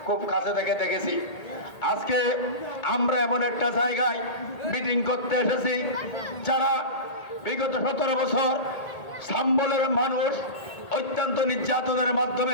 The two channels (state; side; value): late; right; 1.8 ms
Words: খুব কাছে থেকে দেখেছি। আজকে আমরা এমন একটা জায়গায় মিটিং করতে এসেছি যারা বিগত 17 বছর সাম্বলের মানুষ অত্যন্ত নির্যাতনের